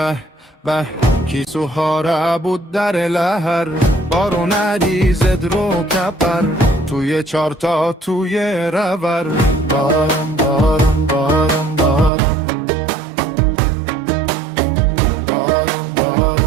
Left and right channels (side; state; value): left; drops out; at 12.1 s